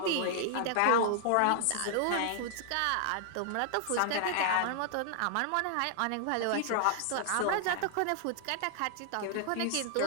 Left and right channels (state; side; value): different; both; correlation 0.00